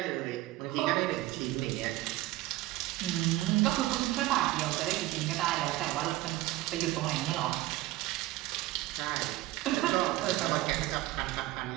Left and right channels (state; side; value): quieter; left; 17.3 dB